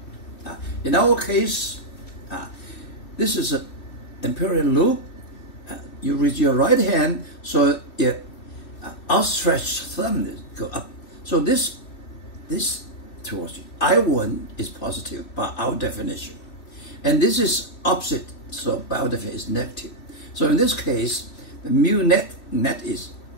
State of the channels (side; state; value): right; late; 3.2 ms